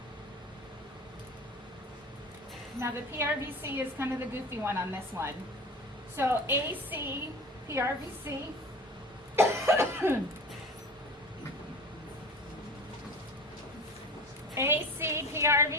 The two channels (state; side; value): normal; both; correlation 0.35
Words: Now the PRVC is kind of the goofy one on this one. So AC PRVC AC